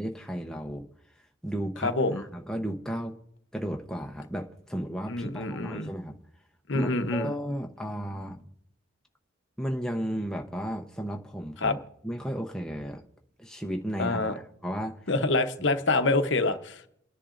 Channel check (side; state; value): both; normal; correlation 0.27